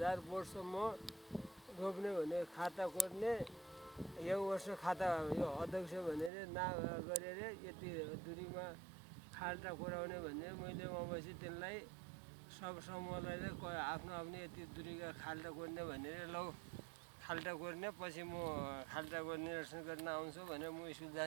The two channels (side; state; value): left; drops out; at 6.3 s